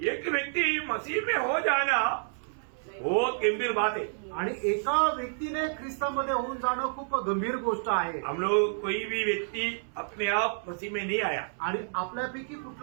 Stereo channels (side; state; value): left; silent; 58 dB below the other